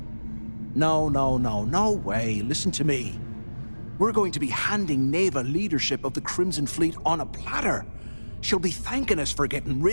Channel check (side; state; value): both; inverted; correlation -1.00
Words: No way. Listen to me. We're going to be handing Neva leadership of the Crimson Fleet on a platter. She'll be thanking us for getting